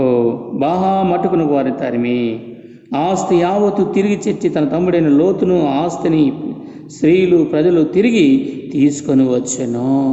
బాహా మట్టుకునకు వారిని తరిమి ఆస్తి యావత్తు తిరిగి తెచ్చి తన తమ్ముడైన లోతును ఆస్తిని స్త్రీలు ప్రజలు తిరిగి తీసుకొని వచ్చెను.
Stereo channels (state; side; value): identical; both; correlation 1.00